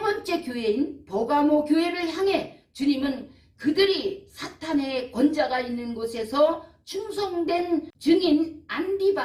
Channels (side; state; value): both; identical; correlation 1.00